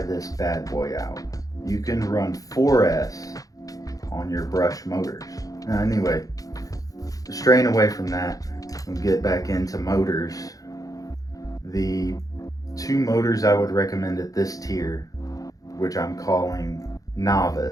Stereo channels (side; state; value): right; late; 0.17 ms